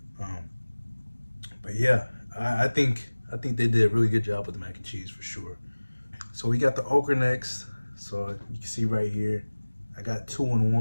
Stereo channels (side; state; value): both; inverted; correlation -1.00